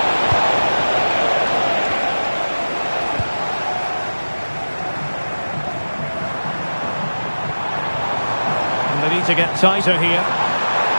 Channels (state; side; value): inverted; both; correlation -1.00